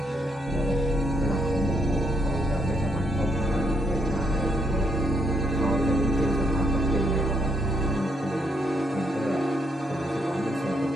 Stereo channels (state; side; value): normal; both; correlation 0.75